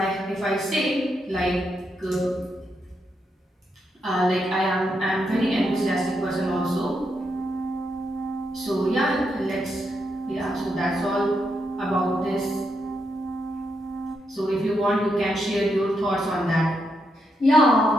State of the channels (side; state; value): both; normal; correlation 0.81